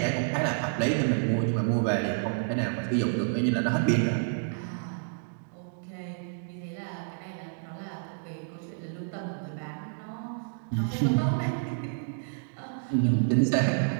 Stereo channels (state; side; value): silent; left; digital silence